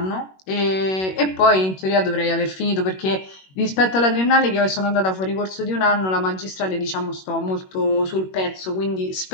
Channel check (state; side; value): late; right; 21 ms